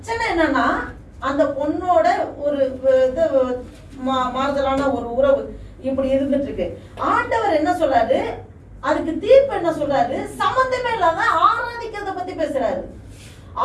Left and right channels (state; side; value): identical; both; correlation 1.00